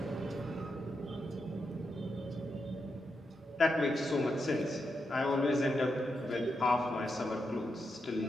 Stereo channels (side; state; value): both; normal; correlation 0.85